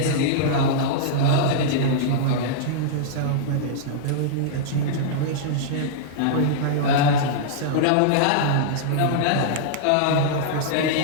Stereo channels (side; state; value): both; different; correlation -0.02